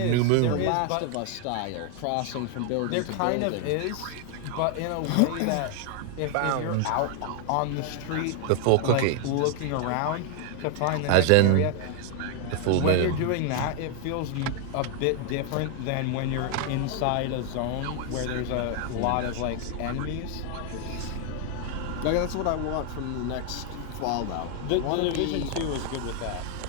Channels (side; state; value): both; different; correlation 0.00